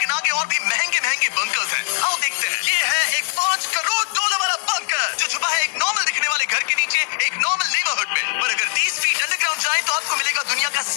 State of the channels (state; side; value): silent; right; 65 dB below the other